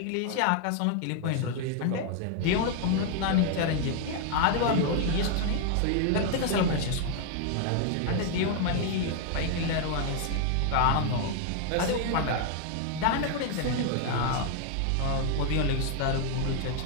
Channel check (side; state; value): both; different; correlation 0.00